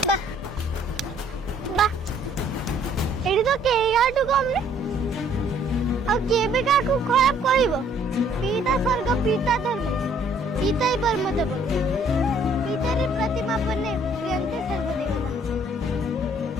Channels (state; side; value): normal; both; correlation 0.61